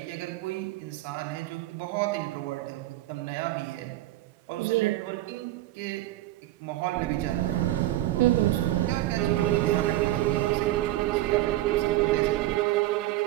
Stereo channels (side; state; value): left; quieter; 15.9 dB